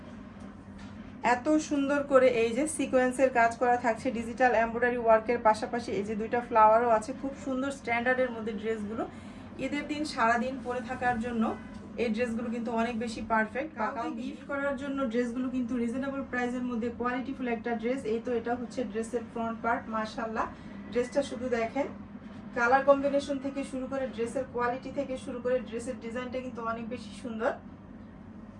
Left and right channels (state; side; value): identical; both; correlation 1.00